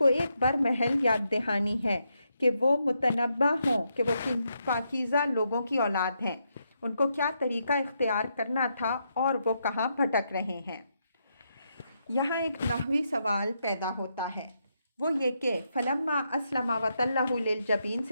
ایک برمحل یاد دہانی ہے کہ وہ متنبہ ہوں کہ وہ پاکیزہ لوگوں کی اولاد ہیں، ان کو کیا طریقہ اختیار کرنا تھا اور وہ کہاں بھٹک رہے ہیں۔ یہاں ایک نحوی سوال پیدا ہوتا ہے، وہ یہ کہ فلما اسلم وتلہ للجبین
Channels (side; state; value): both; inverted; correlation -0.80